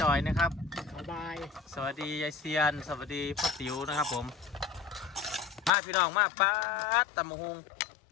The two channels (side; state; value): right; drops out; at 5.7 s